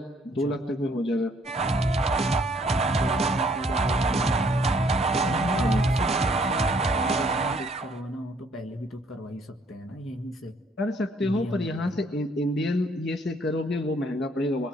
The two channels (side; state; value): both; normal; correlation 0.65